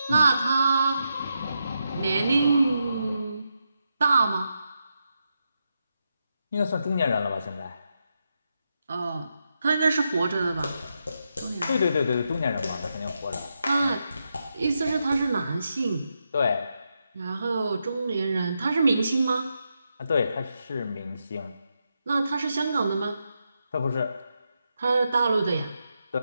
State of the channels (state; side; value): inverted; both; correlation -0.85